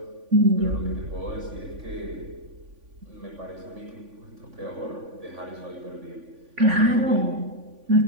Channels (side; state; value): left; late; 3.5 ms